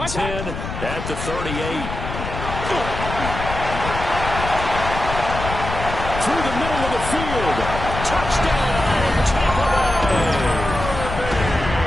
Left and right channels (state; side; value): noise; left; rumble, 6 dB below the sound